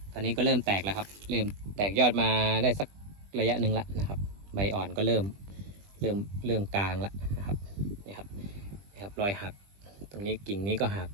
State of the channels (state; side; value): late; left; 20 ms